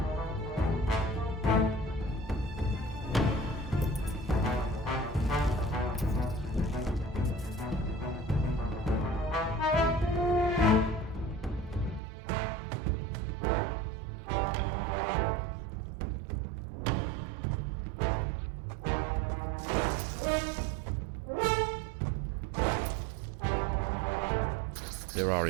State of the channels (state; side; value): drops out; left; at 12.0 s